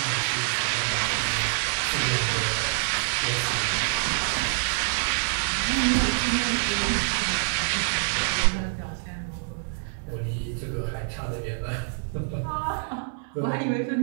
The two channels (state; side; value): silent; left; digital silence